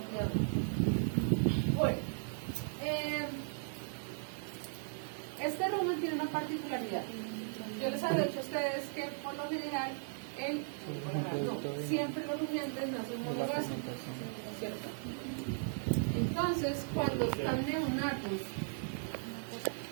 Bueno, este rumen tiene una particularidad. Yo les había dicho a ustedes que por lo general siempre los rumiantes no son monogástricos, ¿cierto? Entonces, cuando están neonatos,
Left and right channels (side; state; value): left; silent; digital silence